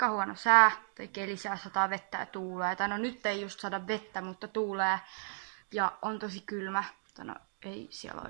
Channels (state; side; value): silent; left; digital silence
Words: sää, tai kelisää, sataa vettä ja tuulee. Tai no nyt ei just saada vettä, mutta tuulee. Ja on tosi kylmä. No ei siellä